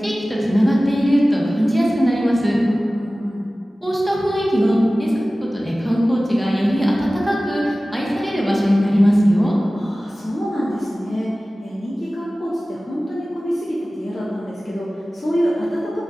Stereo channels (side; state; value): both; normal; correlation 0.97